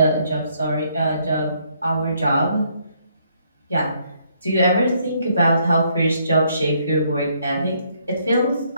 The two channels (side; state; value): both; inverted; correlation -0.70